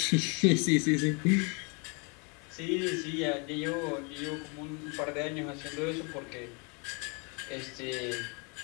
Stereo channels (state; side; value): quieter; right; 32.9 dB